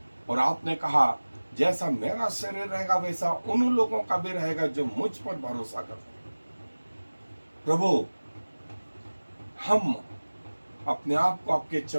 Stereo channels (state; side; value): inverted; both; correlation -1.00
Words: और आपने कहा जैसा मेरा शरीर रहेगा वैसा उन लोगों का भी रहेगा जो मुझ पर भरोसा करते हैं। प्रभु, हम अपने आप को आपके